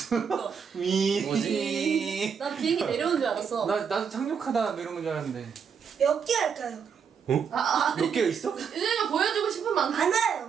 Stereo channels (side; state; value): left; quieter; 6.8 dB